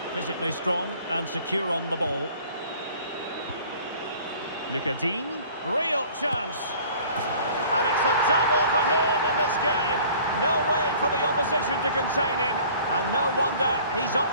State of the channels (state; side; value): inverted; both; correlation -0.50